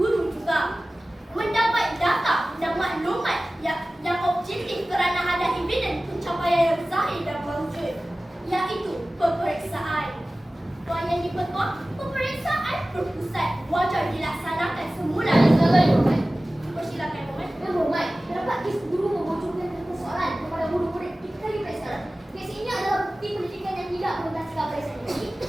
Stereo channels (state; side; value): normal; both; correlation 0.97